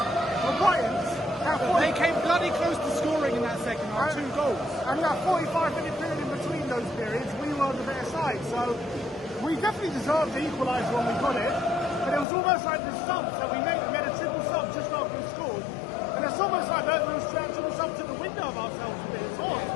were Brighton's. They came bloody close to scoring in that second half, 2 goals. And that 45-minute period in between those periods, we were the better side. So we definitely deserved the equaliser when we got it, but it was almost like the subs that we made. We had a triple sub just after we scored, and it's almost like those triple subs took the window of ourselves a bit.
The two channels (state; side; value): drops out; right; at 12.2 s